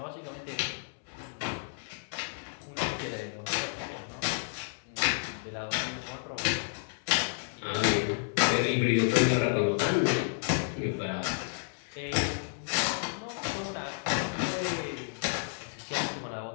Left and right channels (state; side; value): silent; right; 57 dB below the other